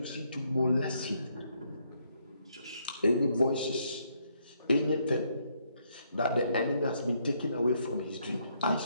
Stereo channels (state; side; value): inverted; both; correlation -0.73